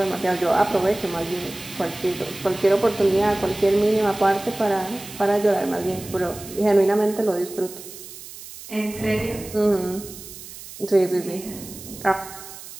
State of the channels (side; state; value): right; noise; hiss, 14 dB below the sound